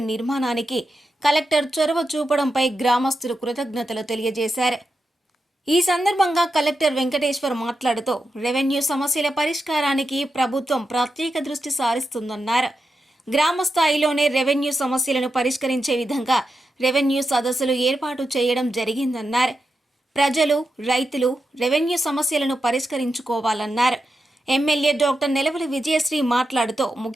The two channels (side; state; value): both; normal; correlation 0.88